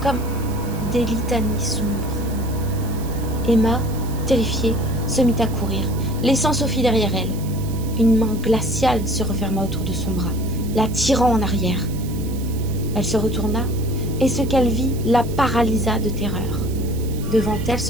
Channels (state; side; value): noise; right; hiss, 17 dB below the sound